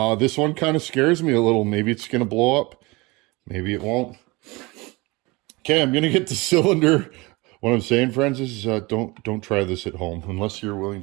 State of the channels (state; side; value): quieter; left; 24.1 dB